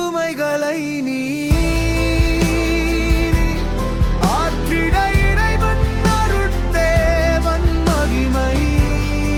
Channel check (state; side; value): identical; both; correlation 1.00